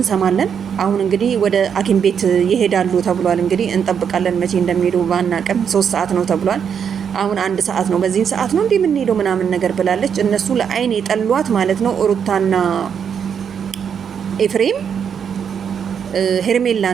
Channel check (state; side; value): quieter; left; 7.5 dB